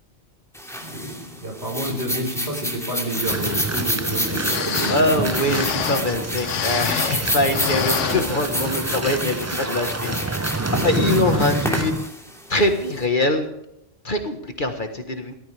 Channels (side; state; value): both; normal; correlation -0.03